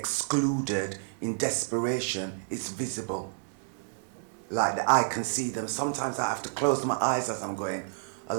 in desperation, it's visible. Like that, I can see them. Sometimes I have to close my eyes as I'm going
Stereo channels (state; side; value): silent; left; 58 dB below the other